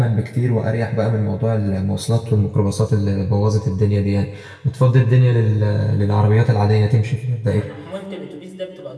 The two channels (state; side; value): identical; both; correlation 1.00